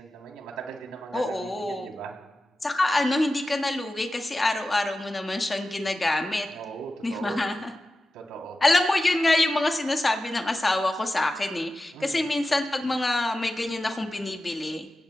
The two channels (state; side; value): normal; both; correlation 0.93